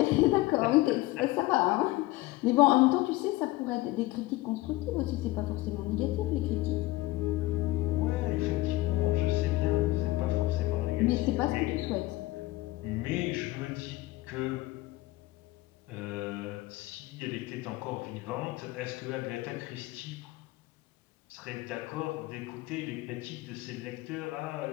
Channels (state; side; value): quieter; right; 18.7 dB